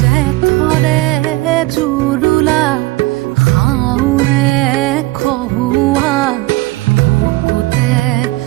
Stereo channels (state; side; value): quieter; left; 19.9 dB